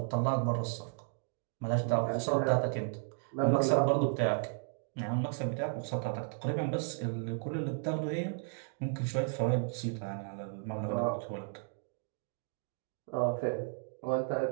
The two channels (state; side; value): silent; left; 55 dB below the other